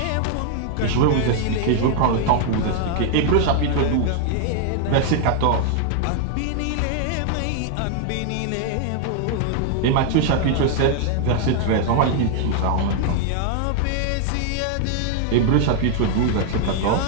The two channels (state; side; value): different; both; correlation 0.00